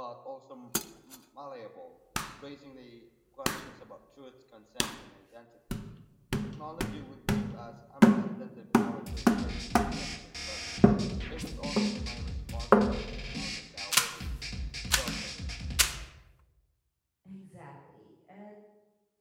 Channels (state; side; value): identical; both; correlation 1.00